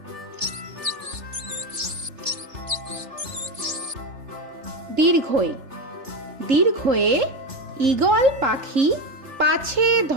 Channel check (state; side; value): late; left; 3.4 ms